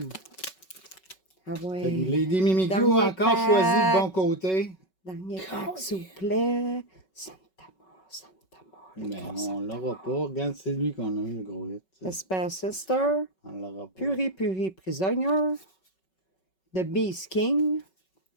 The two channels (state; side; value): late; right; 5.3 ms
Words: Ah Fait que ouais. Lady Mimikyu Dernier a encore pack. choisi le bon côté. Dernier pack, s'il vous plaît. Santa Mort, Santa Mort. Mais on l'aura pas. Regarde, c'est lui qu'on a eu le gros hit. Esper Sister. On l'aura pas. Puri Prisonnier. The Beast King.